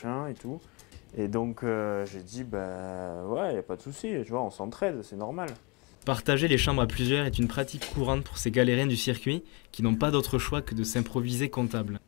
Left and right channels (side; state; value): right; quieter; 30.1 dB